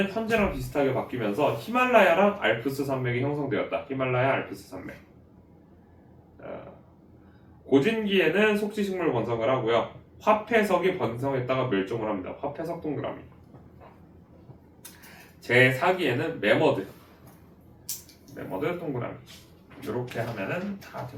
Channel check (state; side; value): identical; both; correlation 1.00